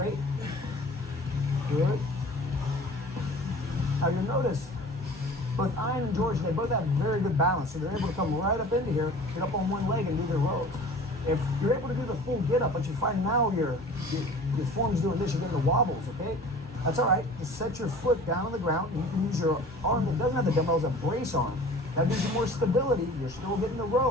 Good. Now you'll notice both Ian and George, they both have very good balance, so they're able to come right up into here, get up on one leg and do their rows. If you're able to do the full get up, but you find now your form's doing this, you're getting the wobbles, okay? That's all right. Just set your foot down on the ground, and you can use your arm that doesn't have the dumbbell as a brace arm. That gives you more stability. You're still getting the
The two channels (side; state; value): both; normal; correlation 0.43